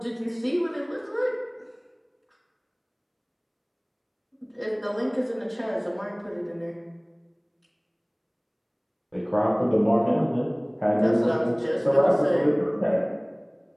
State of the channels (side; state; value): both; identical; correlation 1.00